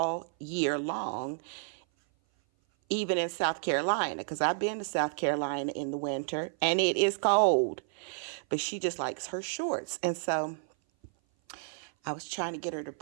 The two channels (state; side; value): silent; left; 56 dB below the other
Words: year long even in South Carolina, because I've been to South Carolina in the winter and it is cold. But she just likes her shorts. And so I was trying to get her to